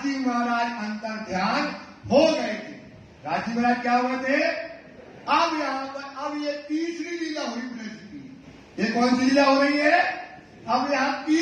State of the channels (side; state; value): both; identical; correlation 1.00